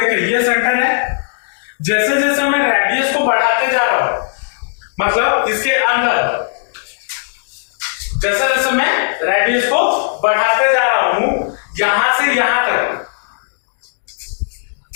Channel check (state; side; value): silent; right; digital silence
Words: ये सेंटर है, जैसे जैसे मैं रेडियस को बढ़ाते जा रहा हूं, मतलब इसके अंदर जैसे जैसे मैं रेडियस को बढ़ाते जा रहा हूं, यहां से यहां तक,